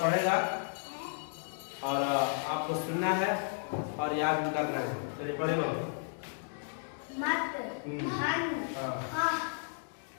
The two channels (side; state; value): right; silent; digital silence